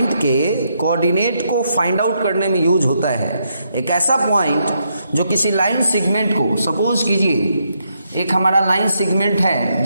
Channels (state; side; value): inverted; both; correlation -0.78